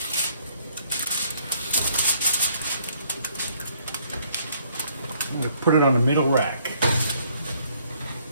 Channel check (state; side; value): inverted; both; correlation -0.64